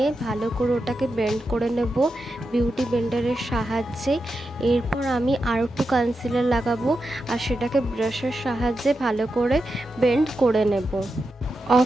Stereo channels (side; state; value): both; normal; correlation 0.88